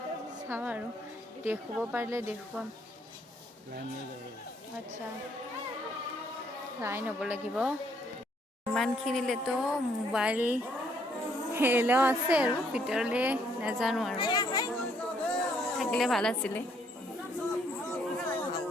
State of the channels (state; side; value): normal; both; correlation 0.68